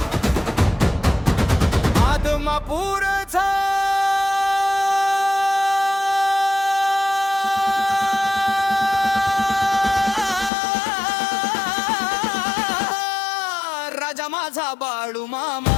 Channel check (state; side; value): drops out; right; at 10.5 s